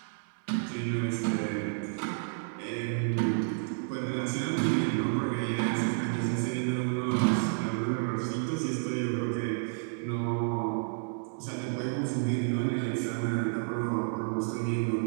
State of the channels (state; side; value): silent; left; digital silence